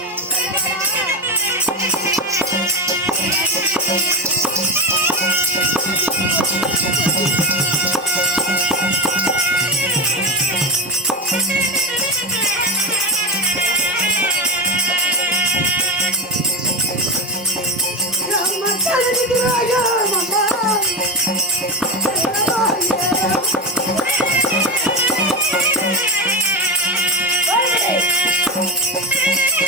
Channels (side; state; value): both; normal; correlation 0.17